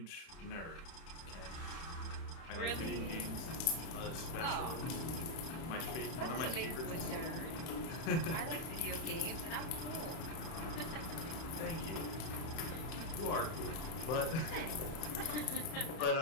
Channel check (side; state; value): right; late; 30 ms